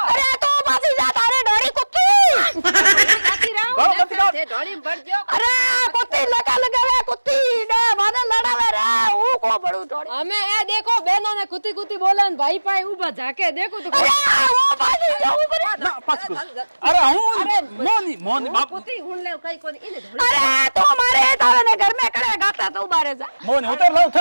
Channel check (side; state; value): both; inverted; correlation -1.00